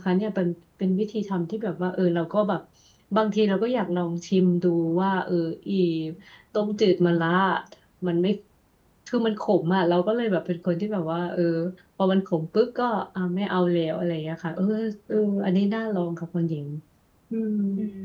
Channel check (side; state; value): both; identical; correlation 1.00